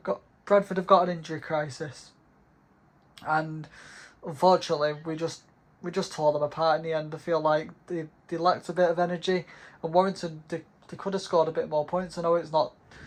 got an injury crisis, and unfortunately we just tore them apart in the end. I feel like they lacked a bit of energy, and Warrington they could have scored a bit more points. I know it's not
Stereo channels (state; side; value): identical; both; correlation 1.00